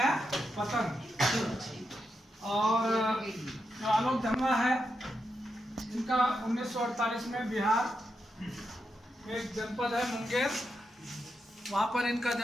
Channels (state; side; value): normal; both; correlation 0.85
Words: पतंग। और जो आलोक धनवा है इनका 1948 में बिहार में एक जनपद है मुंगेर, वहाँ पर इनका